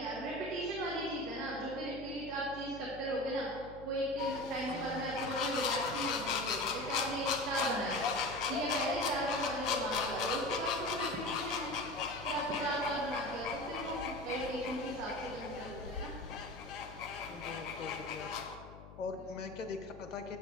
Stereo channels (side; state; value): left; noise; hum, 16 dB below the sound